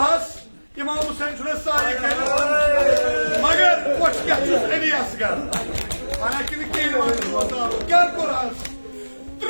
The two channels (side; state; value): both; inverted; correlation -1.00